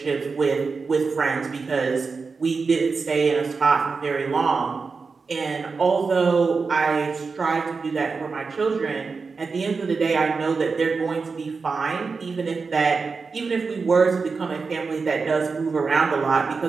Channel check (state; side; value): quieter; left; 4.7 dB